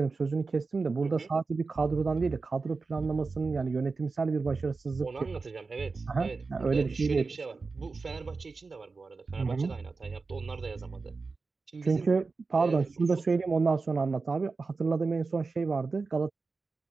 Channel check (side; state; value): left; quieter; 4.2 dB